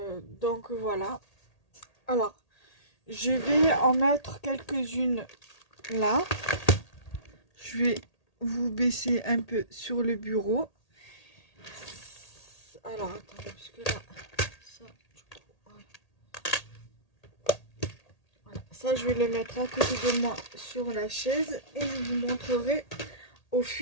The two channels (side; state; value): right; late; 1.8 ms